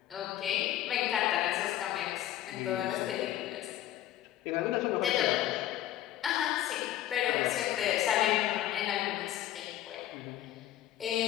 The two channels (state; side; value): quieter; right; 13.1 dB